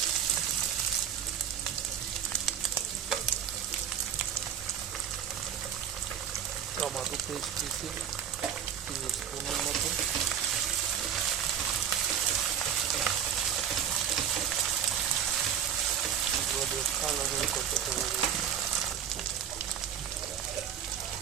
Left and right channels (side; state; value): left; quieter; 8.8 dB